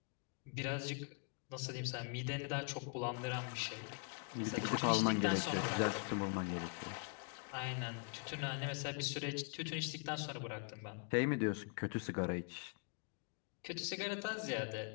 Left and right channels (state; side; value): quieter; right; 39.4 dB